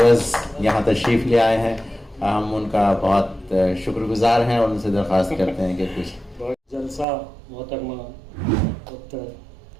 यहाँ तशरीफ़ ले आए हैं। हम उनका बहुत शुक्रगुजार हैं और उनसे दरख्वास्त करते हैं कि कुछ जलसा मोहतरमा डॉक्टर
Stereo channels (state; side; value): drops out; left; at 7.1 s